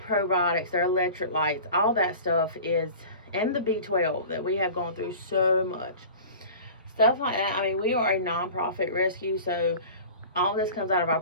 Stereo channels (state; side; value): inverted; both; correlation -0.39